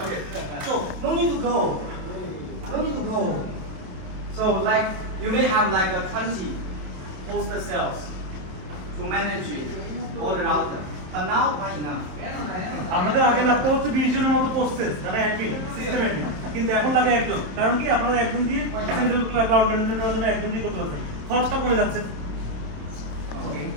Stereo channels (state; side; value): late; left; 27 ms